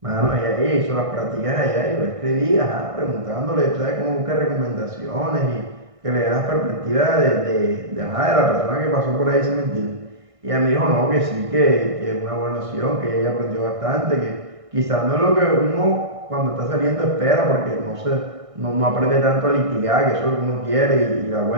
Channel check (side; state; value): left; late; 1.6 ms